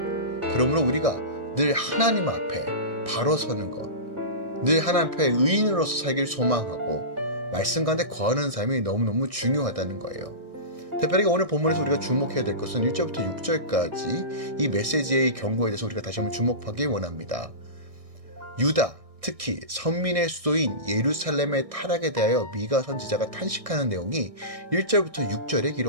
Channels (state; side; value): late; left; 1.6 ms